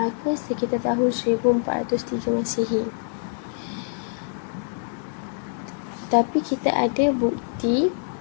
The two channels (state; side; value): silent; right; 62 dB below the other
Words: sekitar tahun 1403 Masihi. Tapi kita ada bukti